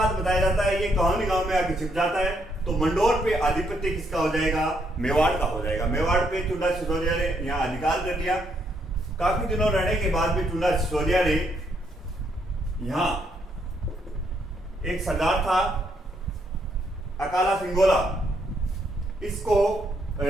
बताया जाता है ये कहानी गांव में आके छिप जाता है, तो मंडोर पे आधिपत्य किसका हो जाएगा? मेवाड़ का हो जाएगा। मेवाड़ पे चुंडा सिसोदिया ने यहाँ अधिकार कर लिया। काफी दिनों रहने के बाद भी चुंडा सिसोदिया ने यहाँ एक सरदार था अकाला सिंगोला, इस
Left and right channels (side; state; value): both; normal; correlation 0.74